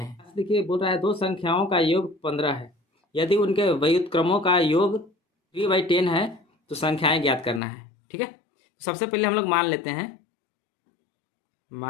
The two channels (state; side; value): drops out; right; at 7.6 s